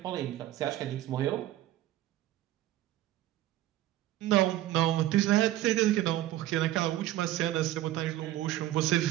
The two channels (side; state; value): left; quieter; 14.4 dB